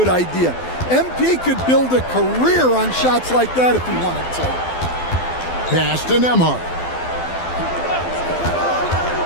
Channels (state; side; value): late; right; 12 ms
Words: idea. MP could build a career on shots like that if he wanted to. Pass to Nembhard.